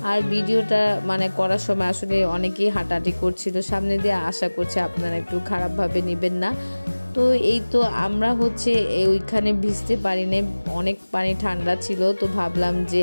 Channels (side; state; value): both; inverted; correlation -1.00